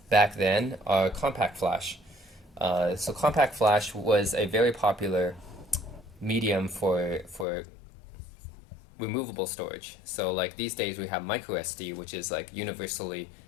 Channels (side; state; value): right; drops out; at 7.5 s